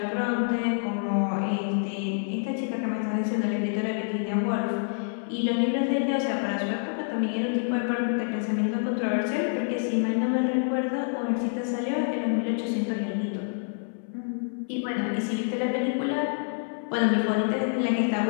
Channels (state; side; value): silent; right; 60 dB below the other